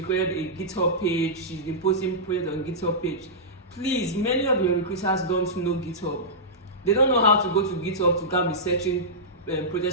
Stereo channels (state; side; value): normal; both; correlation -0.14